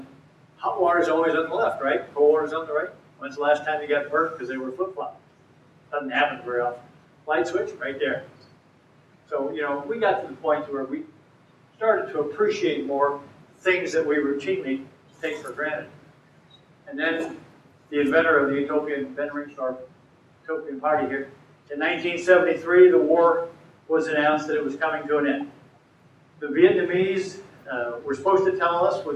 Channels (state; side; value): identical; both; correlation 1.00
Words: hot water is always on the left, right? Cold water is on the right. When's the last time you got burnt because they were flip-flopped? Doesn't happen very often. Light switch, right there. So, you know, we got to the point where we started to appreciate more things that we routinely take for granted. And then the inventor of the utopian, Ben Ringsdorf, utopian party here, in 1973, the war was announced that it was coming to an end. The Vietnamese were supposed to tell us